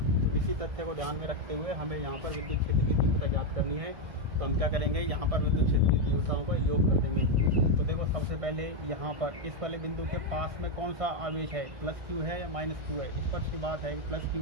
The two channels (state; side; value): late; left; 1.6 ms